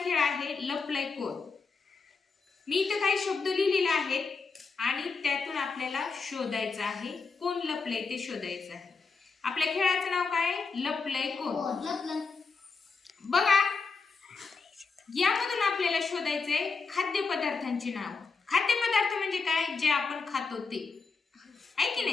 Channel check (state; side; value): quieter; right; 4.7 dB